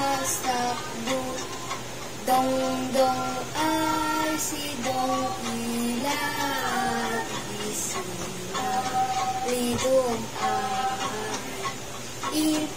dong ay si dong ilat, isila lidong ay,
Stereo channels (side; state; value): both; identical; correlation 1.00